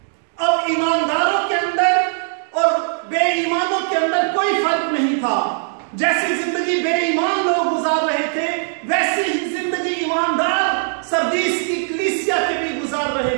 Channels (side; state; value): left; silent; 66 dB below the other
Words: अब ईमानदारों के अंदर और बेईमानों के अंदर कोई फर्क नहीं था। जैसी जिंदगी बेईमान लोग गुजार रहे थे वैसी ही जिंदगी ईमानदार सरदीस की कलीसिया के भी गुजार रहे